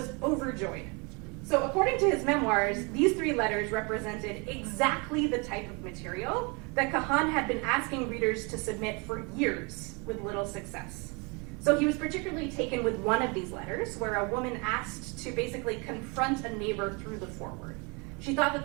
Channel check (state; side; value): quieter; left; 30.6 dB